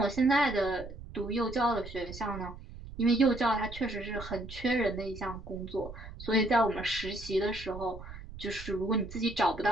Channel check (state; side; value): noise; right; rumble, 13 dB below the sound